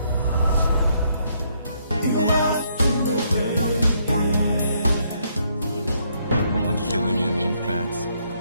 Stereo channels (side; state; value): both; inverted; correlation -0.72